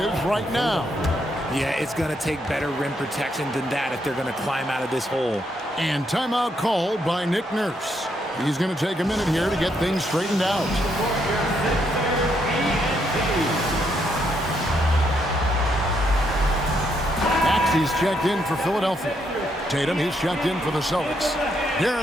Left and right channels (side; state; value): both; normal; correlation 0.76